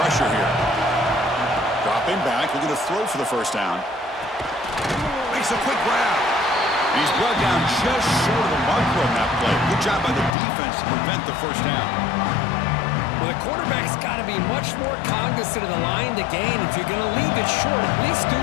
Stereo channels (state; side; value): drops out; right; at 10.3 s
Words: here. Dropping back, looking to throw for the 1st down. Makes a quick grab. He's brought down just short of the marker on that play. Good job by the defense to prevent the 1st down. Well, the quarterback's got to be much more cognizant of the line to gain. If you're going to leave it short, at least do